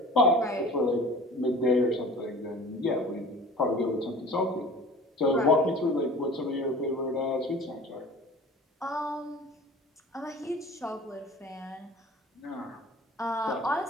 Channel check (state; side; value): normal; both; correlation 0.43